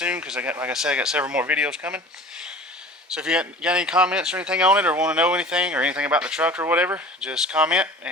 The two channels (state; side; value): normal; both; correlation 0.42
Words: because like I said, I got several more videos coming. So if you got any comments or anything on it, or want to know anything or anything about the truck or whatever, just comment